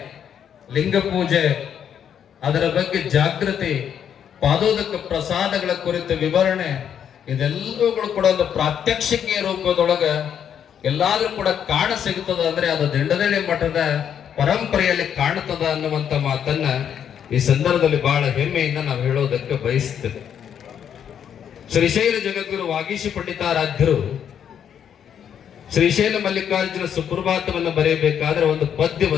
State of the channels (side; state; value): right; quieter; 8.7 dB